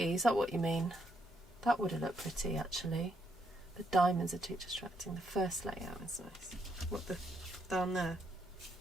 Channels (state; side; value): normal; both; correlation 0.76